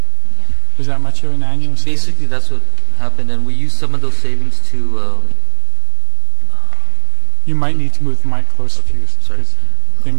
an annual savings? Basically, that's what happened, and we used some of those savings to. You might need to move the mic closer to you. Sorry. They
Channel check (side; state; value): left; quieter; 32.9 dB